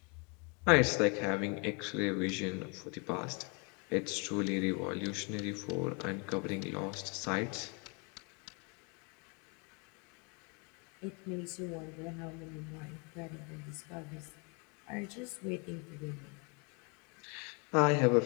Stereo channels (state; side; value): quieter; right; 33.3 dB